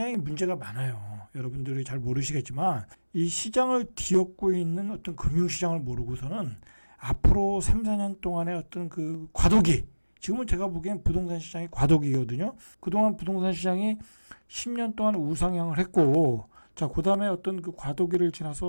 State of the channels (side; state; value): both; inverted; correlation -1.00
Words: 문제가 많아요. 여러분들이 잘 모르시겠지만 이 시장을 뒤엎고 있는 어떤 금융시장을 모르고서는 앞으로 3, 4년 동안의 어떤 그 과도기, 지금은 제가 보기엔 부동산 시장이 과도기거든요. 그동안 부동산 시장이 10년 동안 우상향을 했고, 자, 그 다음에 어떤 그 과도기를